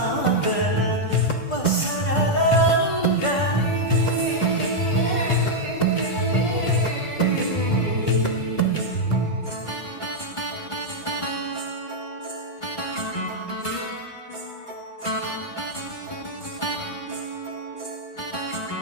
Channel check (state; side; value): late; right; 1.5 ms